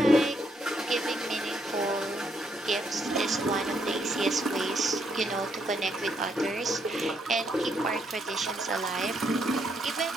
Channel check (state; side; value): normal; both; correlation 0.75